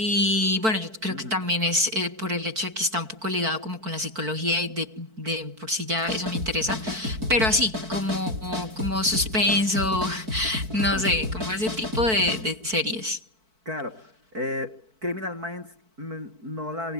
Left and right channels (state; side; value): late; left; 4.5 ms